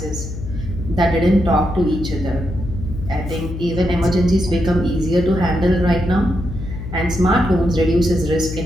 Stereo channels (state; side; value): noise; left; hum, 8 dB below the sound